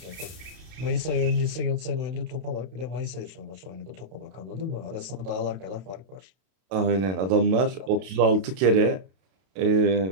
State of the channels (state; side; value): late; left; 32 ms